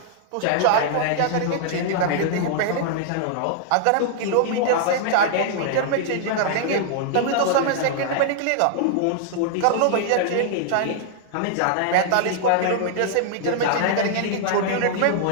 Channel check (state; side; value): different; both; correlation -0.01